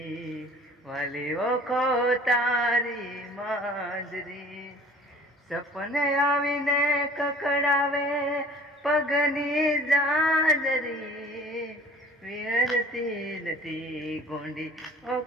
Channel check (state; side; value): normal; both; correlation 0.48